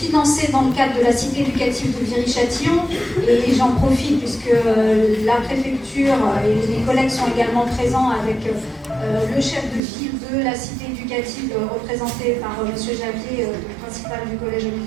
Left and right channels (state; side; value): drops out; left; at 9.8 s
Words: dans le cadre de la cité éducative de Viry-Châtillon. Et j'en profite, puisque la préfecture et les collègues sont également présents avec le chef de file de la cité éducative, représenté par M. Javier, le principal du collège